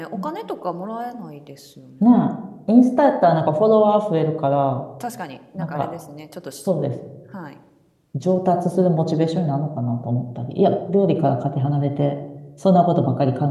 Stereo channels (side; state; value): both; identical; correlation 1.00